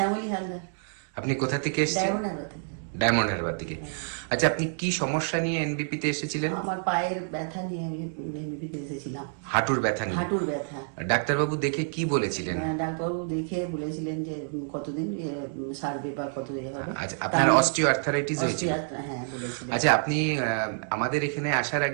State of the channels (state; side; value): silent; left; digital silence